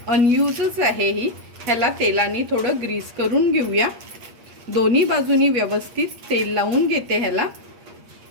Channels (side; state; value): left; late; 8.5 ms